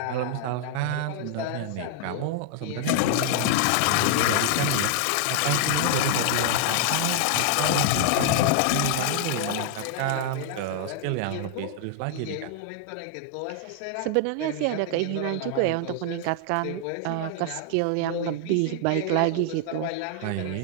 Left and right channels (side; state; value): both; different; correlation 0.00